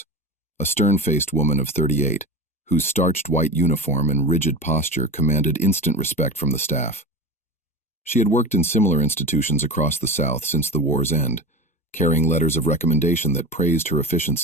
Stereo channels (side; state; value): both; normal; correlation 0.27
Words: a stern-faced woman of 38, whose starched white uniform and rigid posture commanded instant respect from the staff. She had worked in similar institutions across the South since the war's end, carrying letters of recommendation that praised her